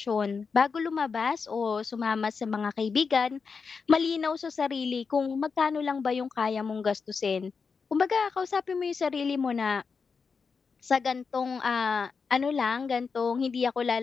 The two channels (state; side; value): quieter; right; 5.3 dB